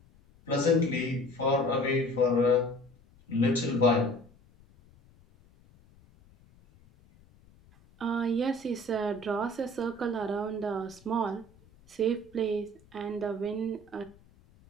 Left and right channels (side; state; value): left; noise; rumble, 28 dB below the sound